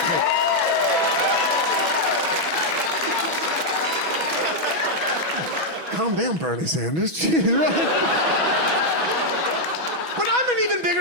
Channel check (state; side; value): late; left; 6.1 ms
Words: Calm down, Bernie Sanders. Jeez, right? But I'm an even